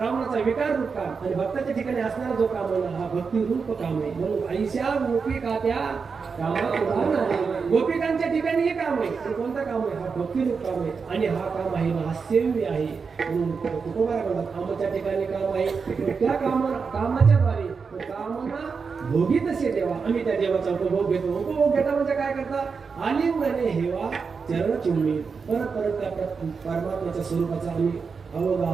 विकार रूप काम, आणि भक्ताच्या ठिकाणी असणारा जो काम आहे हा भक्ती रूप काम आहे. म्हणून आईशा गोपिका त्या कामात उदाहरण आहे. गोपिकांच्या ठिकाणी हे काम आहे. पण कोणतं काम आहे? हा भक्ती रूप काम आहे, आणि हा काम आहे ना सेव्य आहे. म्हणून तुकोबा म्हणतात आमच्या ठिकाणी काम आहे. त्या कामाच्या द्वारे कामना भोगी तसे देवा, आम्ही त्या देवाचा उपभोग घेतो. उपभोग घेता म्हणजे काय करता? आलिंगने हेवा चरण चुंबी, परत परत त्या परमात्म्याच्या स्वरूपाचा आम्ही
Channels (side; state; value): left; quieter; 5.3 dB